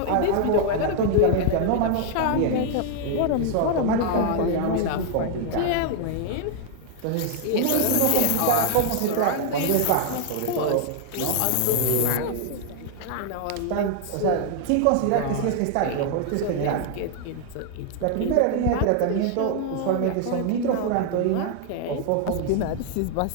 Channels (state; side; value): different; both; correlation 0.00